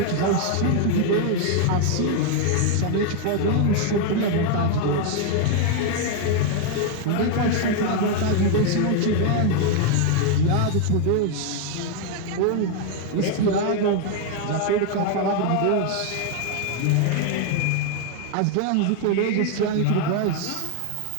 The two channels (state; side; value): different; both; correlation 0.00